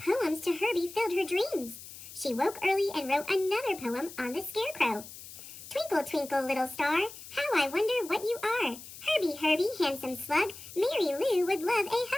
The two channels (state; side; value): noise; left; hiss, 15 dB below the sound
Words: to Herbie filled her dreams. She woke early and wrote another poem on the scarecrow. Twinkle, twinkle, little star, how I wonder what you are. Herbie, Herbie, handsome slug, Mary Lou would love a